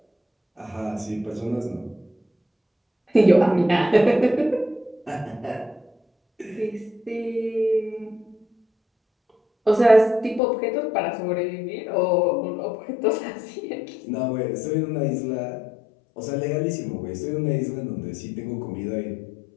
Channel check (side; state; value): right; drops out; at 10.4 s